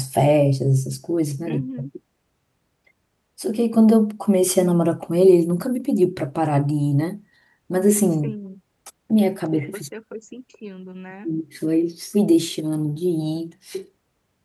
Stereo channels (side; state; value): both; identical; correlation 1.00